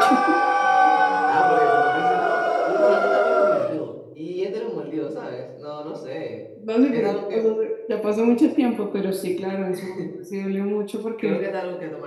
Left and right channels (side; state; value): both; identical; correlation 1.00